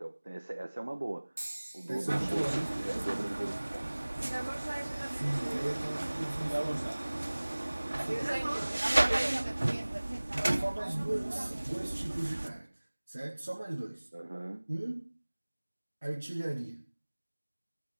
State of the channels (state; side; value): inverted; both; correlation -1.00